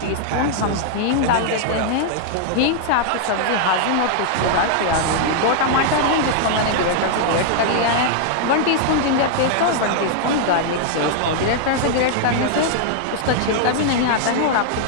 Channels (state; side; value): different; both; correlation -0.01